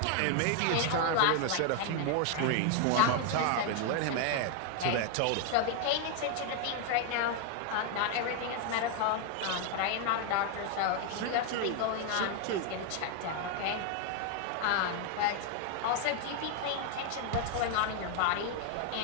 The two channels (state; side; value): different; both; correlation 0.00